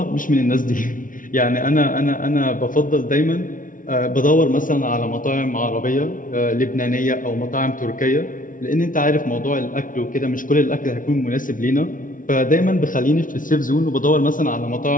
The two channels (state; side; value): late; right; 0.38 ms